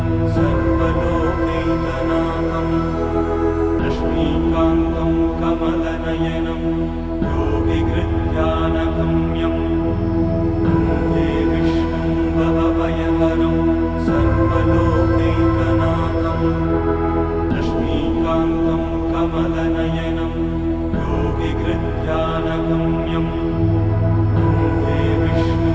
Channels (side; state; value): both; identical; correlation 1.00